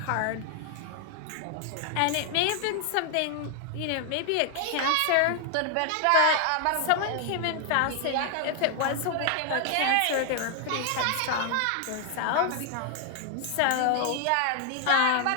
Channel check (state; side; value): different; both; correlation 0.00